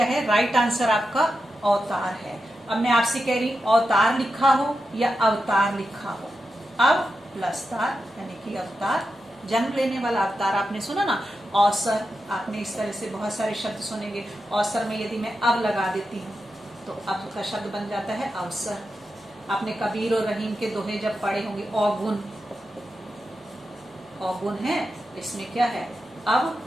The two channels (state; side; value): normal; both; correlation 0.89